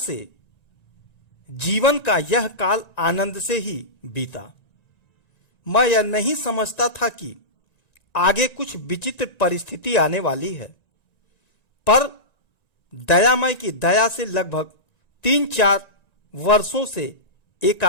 जीवन का यह काल आनंद से ही बीता। मैं यह नहीं समझता था कि आगे कुछ विचित्र परिस्थिति आने वाली है, पर दयामय की दया से लगभग 3-4 वर्षों से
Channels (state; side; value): late; right; 1.9 ms